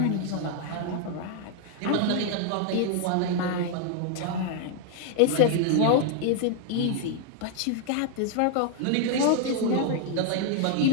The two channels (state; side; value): different; both; correlation 0.00